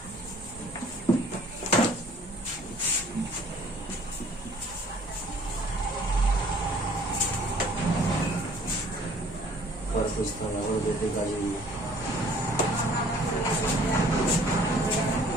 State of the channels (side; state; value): both; normal; correlation 0.55